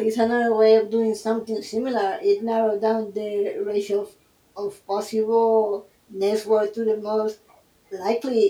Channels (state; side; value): identical; both; correlation 1.00